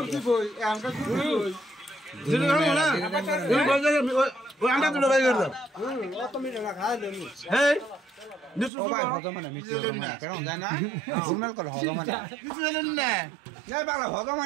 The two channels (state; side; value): drops out; left; at 8.7 s